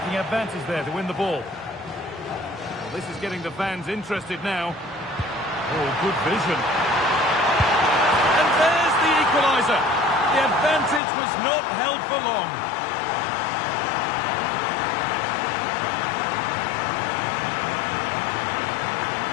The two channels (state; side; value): drops out; right; at 11.0 s